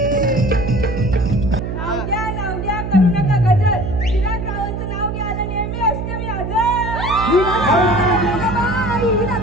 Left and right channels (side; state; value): right; noise; hum, 5 dB below the sound